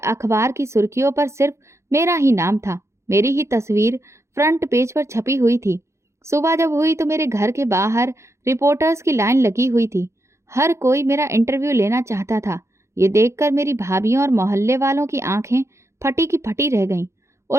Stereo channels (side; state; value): left; late; 0.14 ms